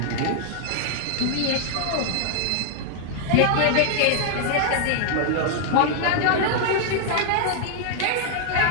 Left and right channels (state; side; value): different; both; correlation 0.00